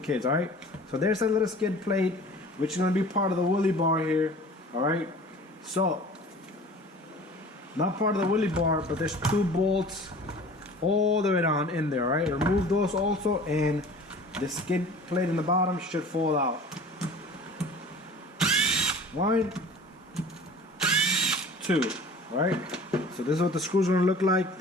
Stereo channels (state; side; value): normal; both; correlation 0.44